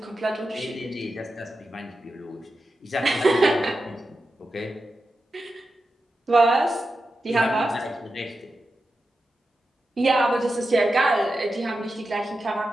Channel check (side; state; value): both; normal; correlation 0.90